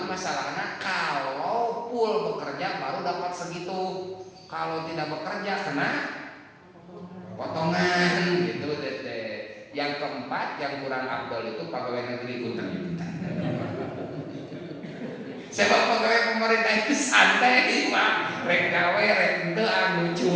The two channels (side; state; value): both; identical; correlation 1.00